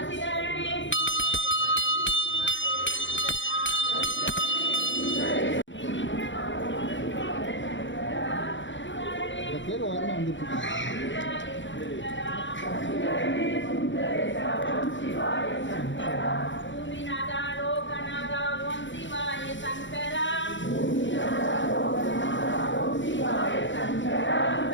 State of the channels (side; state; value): right; late; 0.54 ms